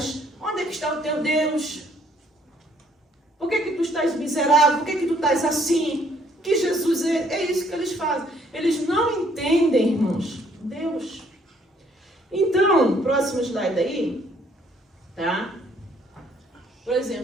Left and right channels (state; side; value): normal; both; correlation 0.65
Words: Onde é que está o teu Deus? Por que tu estás miserável? Por que tu estás assim? Que Jesus é isso que eles fazem. Eles não entendem, irmãos, Deus. Então, próximo slide aí, tá? Por